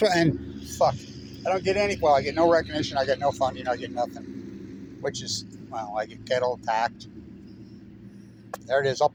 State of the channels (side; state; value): both; identical; correlation 1.00